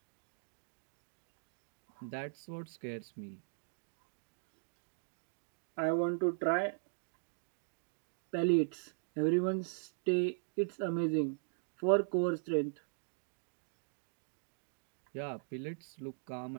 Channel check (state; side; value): silent; left; digital silence